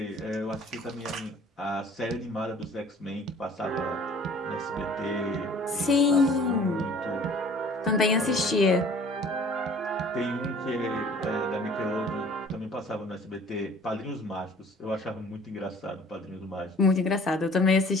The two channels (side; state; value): both; normal; correlation 0.51